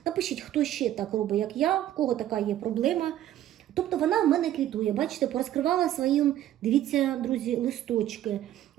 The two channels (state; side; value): quieter; left; 12.5 dB